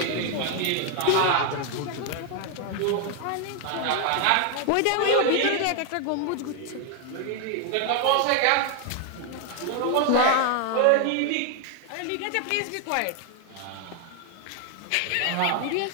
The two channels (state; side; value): different; both; correlation 0.01